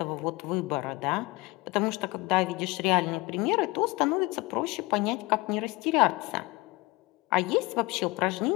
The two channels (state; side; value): quieter; right; 23.1 dB